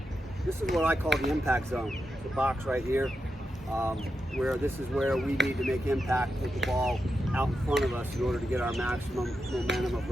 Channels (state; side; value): normal; both; correlation 0.87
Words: This is what I call the impact zone. It's a box right here, where this is where we need to make impact, hit the ball out in front of us in order to get our maximum momentum of